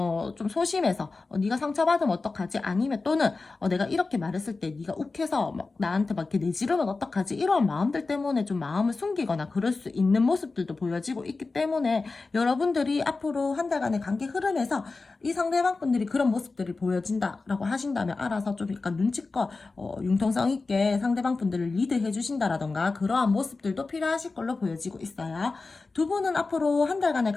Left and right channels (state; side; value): quieter; right; 3.8 dB